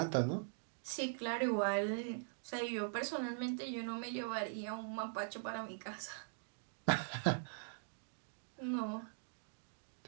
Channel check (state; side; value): silent; left; digital silence